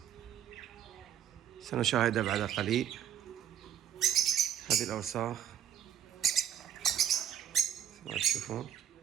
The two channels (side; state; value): left; quieter; 9.7 dB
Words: سنشاهدها بعد قليل. هذه الأوساخ ما تشوفون.